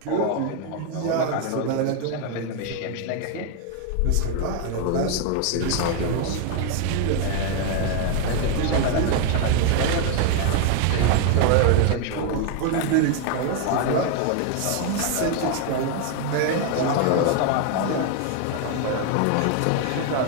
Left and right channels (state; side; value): different; both; correlation 0.01